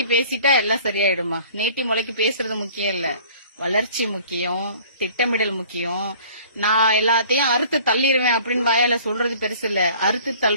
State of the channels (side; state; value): both; inverted; correlation -0.50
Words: பேசிட்டா எல்லாம் சரியாயிடுமா? நீட்டி முளைக்கி பேசுறது முக்கியம் இல்ல, வளர்ச்சி முக்கியம், திட்டமிடல் முக்கியம். நான் எல்லாத்தையும் அறுத்து தள்ளிடுவேன் அப்படின்னு வாயால சொல்றது பெருசு இல்ல, அறுத்து